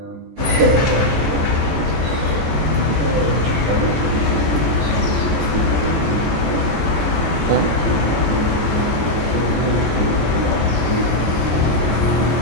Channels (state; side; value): late; left; 14 ms